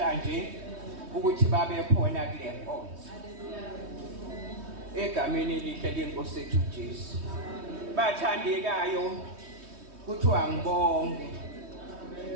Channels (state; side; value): late; left; 3.2 ms